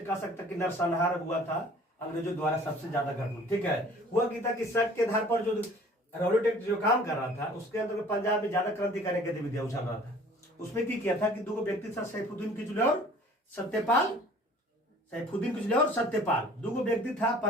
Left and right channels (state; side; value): normal; both; correlation 0.50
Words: कह सकता कि नरसंहार हुआ था अंग्रेजों द्वारा, सबसे ज्यादा घटना। ठीक है, हुआ कि था कि शक के आधार पर जो रॉलेट एक्ट जो काम कर रहा था उसके अंदर पंजाब में ज्यादा क्रांतिकारी गतिविधियां उछल रहा था। उसमें की किया था कि दो व्यक्ति था, सैफुद्दीन किचलू और सत्यपाल। दो व्यक्ति था